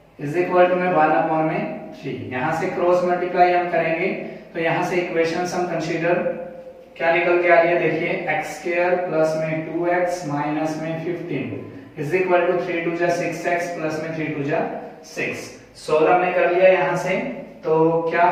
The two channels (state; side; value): identical; both; correlation 1.00